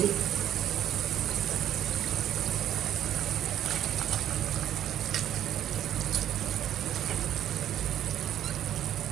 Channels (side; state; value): left; quieter; 11.1 dB